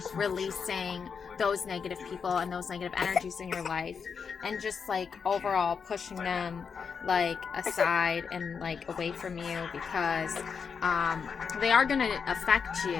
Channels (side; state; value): right; quieter; 6.1 dB